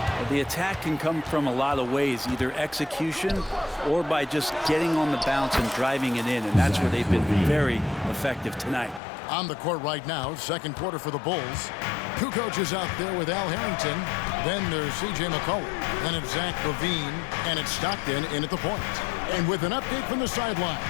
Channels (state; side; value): drops out; right; at 9.0 s